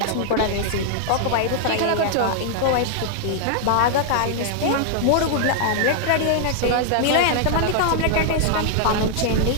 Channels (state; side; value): different; both; correlation -0.01